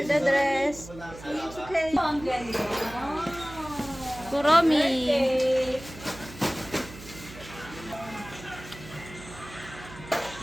the dress. It's okay. Ang galing. Kuromi.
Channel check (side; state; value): right; noise; hum, 16 dB below the sound